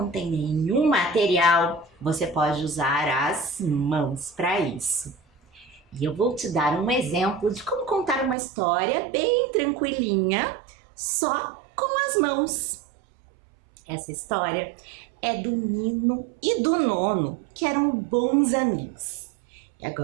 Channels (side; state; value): left; drops out; at 8.3 s